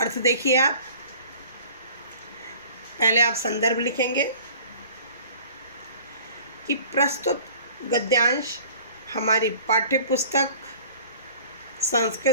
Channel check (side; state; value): both; inverted; correlation -0.47